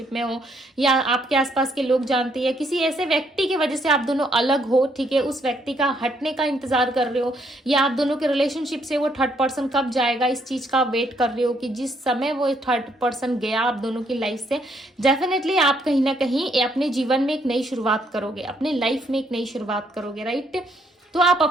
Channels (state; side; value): normal; both; correlation 0.71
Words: में हो, या आपके आसपास के लोग जानते हैं, किसी ऐसे व्यक्ति की वजह से आप दोनों अलग हो। ठीक है, उस व्यक्ति का हटने का इंतजार कर रहे हो, या आप दोनों के रिलेशनशिप से वो थर्ड पर्सन कब जाएगा इस चीज का वेट कर रहे हो कि जिस समय वो थर्ड पर्सन गया आप दोनों की लाइफ से, डेफिनेटली आप कहीं ना कहीं अपने जीवन में एक नई शुरुआत करोगे, अपने लाइफ में एक नई शुरुआत करोगे। राइट, तो आप